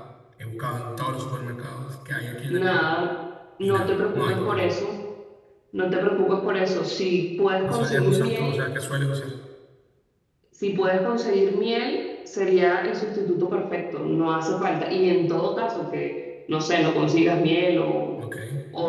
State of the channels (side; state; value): both; identical; correlation 1.00